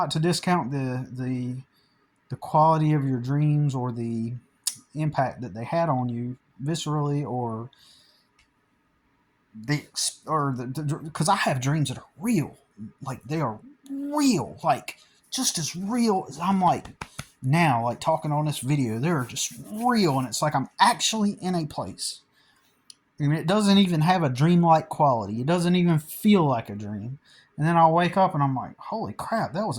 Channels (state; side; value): identical; both; correlation 1.00